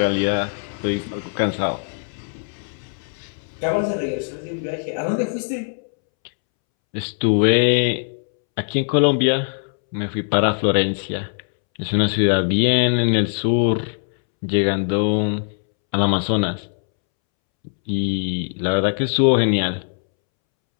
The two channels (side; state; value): right; silent; 65 dB below the other